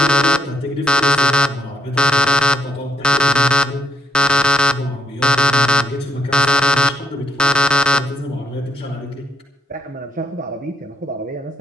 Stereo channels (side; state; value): both; normal; correlation 0.76